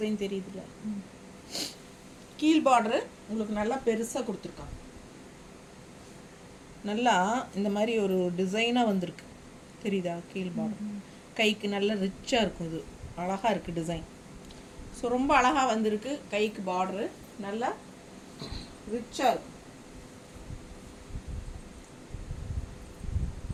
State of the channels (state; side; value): identical; both; correlation 1.00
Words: தெரியுதுல்ல? கீழ் பார்டரு உங்களுக்கு நல்லா பெருசாக கொடுத்துருக்காங்க. நல்லா இந்த மாதிரி ஒரு டிசைனாக வந்திருக்கு. தெரியுதா? கீழ் பார்டர் கைக்கு நல்லா ரிச்சாக இருக்கும். இது அழகாக இருக்குது டிசைன். ஸோ ரொம்ப அழகாக வந்திருக்கு. கைக்கு பார்டரு நல்லா ரிச்சாக இருக்கும்.